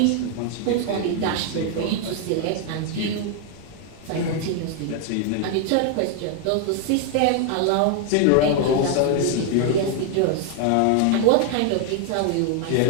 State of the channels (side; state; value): both; different; correlation 0.00